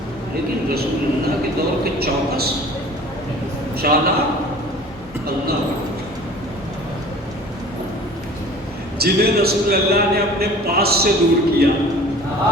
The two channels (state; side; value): normal; both; correlation 0.45